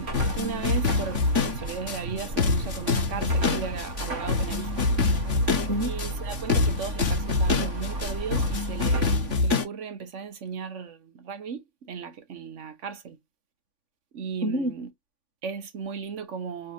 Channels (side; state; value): left; late; 3.5 ms